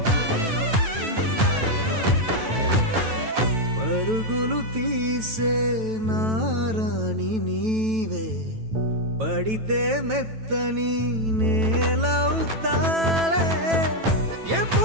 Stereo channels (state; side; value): late; left; 9.1 ms